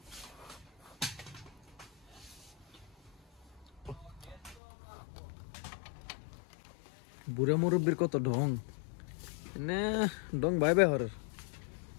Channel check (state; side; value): drops out; right; at 4.6 s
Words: বুড়া মুরব্বীর কত ঢং না, ঢং ভাই ভাই হর